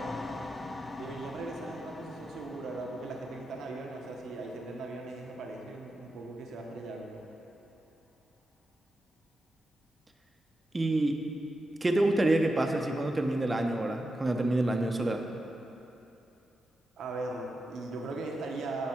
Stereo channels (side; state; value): both; normal; correlation 0.89